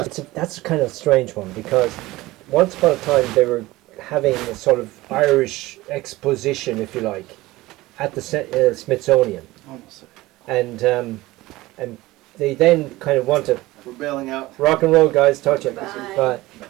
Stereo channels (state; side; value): quieter; left; 18.8 dB